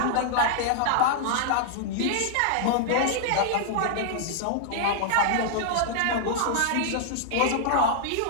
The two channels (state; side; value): different; both; correlation -0.01